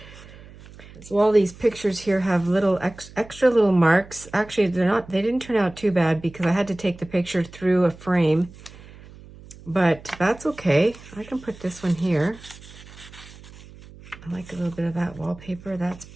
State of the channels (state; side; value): noise; right; hum, 20 dB below the sound